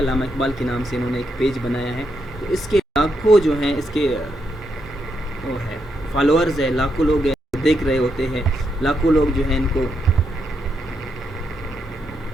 اقبال کے نام سے انہوں نے ایک پیج بنایا ہے. تو اس کے لاکھوں جو ہیں اس کے وہ ہے فالوورز ہے, لاکھوں لوگ دیکھ رہے ہوتے ہیں, لاکھوں لوگ جو ہیں ان کو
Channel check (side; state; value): both; normal; correlation 0.81